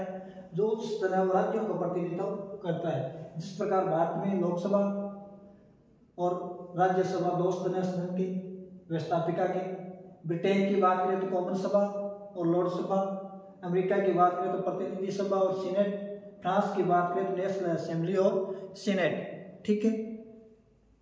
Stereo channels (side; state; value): both; identical; correlation 1.00